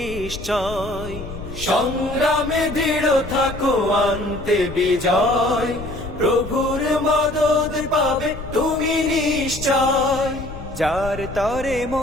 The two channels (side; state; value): left; noise; rumble, 12 dB below the sound